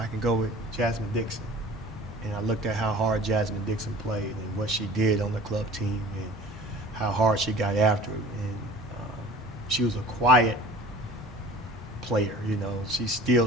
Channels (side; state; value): both; normal; correlation 0.44